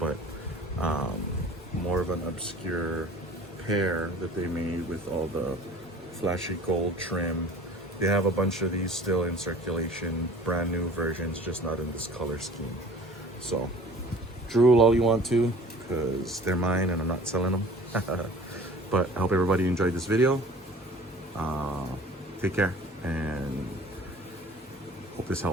more of an obscure pair that they made with all the flashy gold trim. They have a bunch of these still in circulation, brand new versions, just not in this color scheme. So drool all you want to, because they're mine and I'm not selling them. But I hope everybody enjoyed this video. Take care, and hope this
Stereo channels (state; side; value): normal; both; correlation 0.46